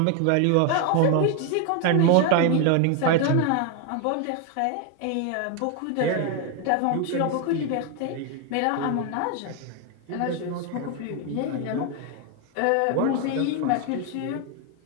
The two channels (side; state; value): both; different; correlation 0.01